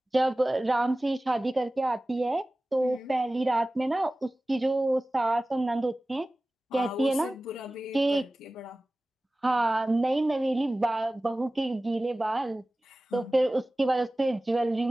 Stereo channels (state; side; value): normal; both; correlation 0.97